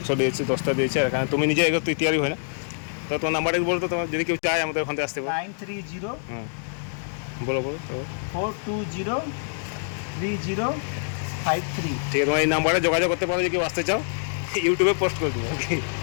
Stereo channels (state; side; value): silent; right; digital silence